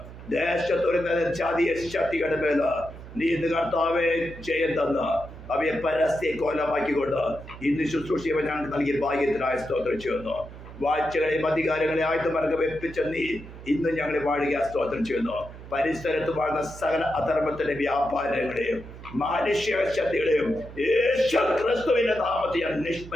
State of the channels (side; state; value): right; noise; hum, 15 dB below the sound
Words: ദേശത്തൊരു ജാതീയ ശക്തികളുടെ മേല് നീ ഇന്ന് കർത്താവെ ജയം തന്ന് അവയെ പരസ്യ കോലമാക്കിക്കൊണ്ട് ഇന്ന് ശുശ്രൂഷ ഞങ്ങൾക്ക് നൽകിയ ഭാഗ്യത്തിനായി സ്തോത്രം ചെയ്യുന്നു. വാഴ്ചകളെയും അധികാരങ്ങളെ ആയുധമാർഗം വെപ്പിച്ച നീ ഇന്ന് ഞങ്ങളെ വാഴുക സ്തോത്രം ചെയ്യുന്നു. പരിസരത്ത് വാഴുന്ന സകല അധർമ്മത്തിന്റെ വ്യാപാരങ്ങളെയും മാനുഷ്യ ശക്തികളെയും യേശു ക്രിസ്തുവിന്റെ നാമത്തിൽ ഞാൻ